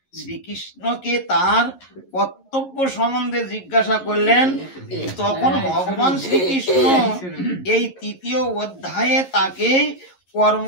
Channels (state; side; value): late; right; 11 ms